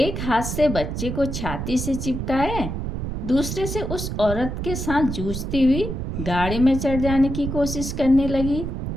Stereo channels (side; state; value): right; noise; rumble, 4 dB below the sound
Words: हाथ से बच्चे को छाती से चिपकाए दूसरे से उस औरत के साथ जूझती हुई गाड़ी में चढ़ जाने की कोशिश करने लगी।